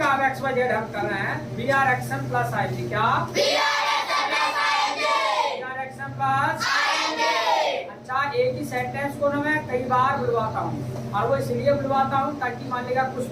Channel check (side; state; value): both; identical; correlation 1.00